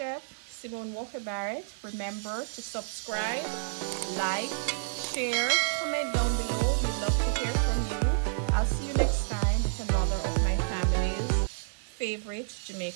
Simone Walker Barrett. Remember to subscribe, like, share, comment down below. We'd love to hear from you. I'll see you next time with another of my family's favorite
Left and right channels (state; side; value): silent; left; digital silence